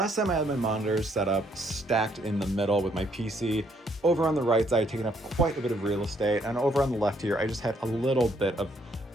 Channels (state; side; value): normal; both; correlation 0.69